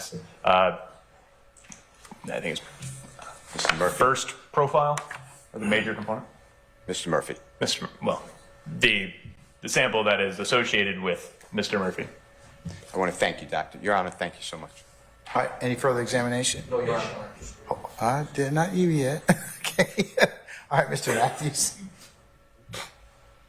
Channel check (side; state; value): both; identical; correlation 1.00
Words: I think it's Mr. Murphy. first profile, or the major component. Mr. Murphy. Well, the sample that is associated with Mr. Murphy. I want to thank you, Doctor. Your Honor, thank you so much. All right, any further examination? No, Your Honor. Oh, I did not you yet. Okay. All right, Mr. Matthews.